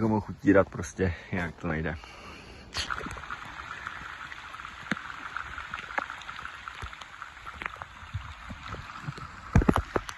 mohl utírat, prostě jinak to nejde.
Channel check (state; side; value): identical; both; correlation 1.00